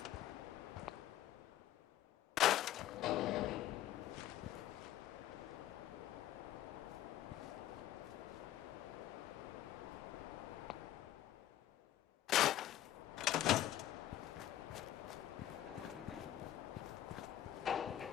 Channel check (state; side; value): quieter; right; 12.9 dB